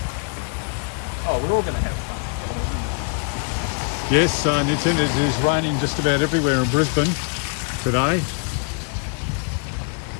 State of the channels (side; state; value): right; quieter; 38.6 dB